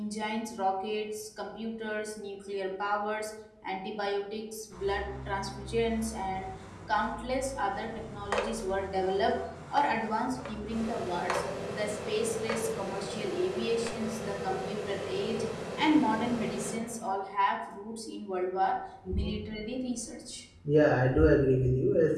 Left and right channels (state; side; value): identical; both; correlation 1.00